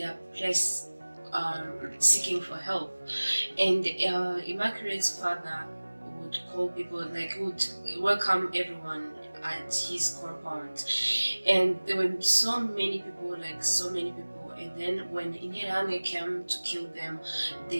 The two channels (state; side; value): inverted; both; correlation -1.00